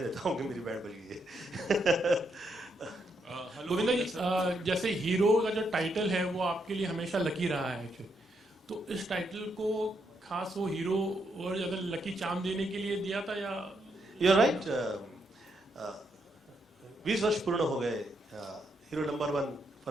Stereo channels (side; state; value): both; normal; correlation 0.78